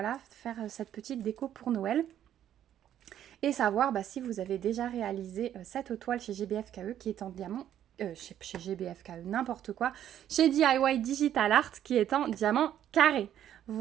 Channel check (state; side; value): quieter; left; 10.8 dB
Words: faire cette petite déco pour Noël. Et savoir si vous avez déjà réalisé cette toile chez GBFKE qui est en diamant, chez GBFKE, n'importe quoi, chez DIY Digital Art qui est en diamant carré.